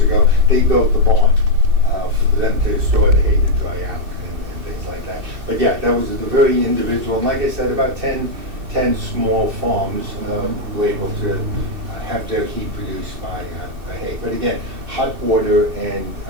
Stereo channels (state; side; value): late; left; 2.6 ms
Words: ago, they built the barn for them to store the hay to dry out and things like that. But yeah, that was a very individual. And like I said, about 10 small farms were able to have their heat produced by hay. But again, hot water and